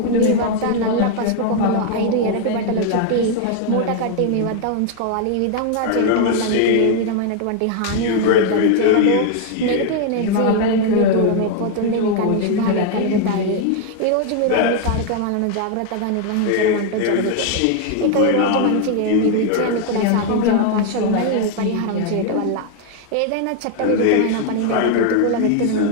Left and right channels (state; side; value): different; both; correlation 0.00